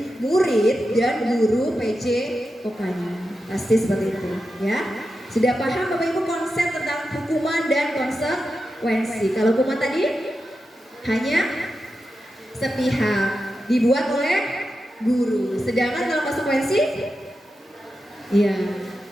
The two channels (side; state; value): both; normal; correlation 0.90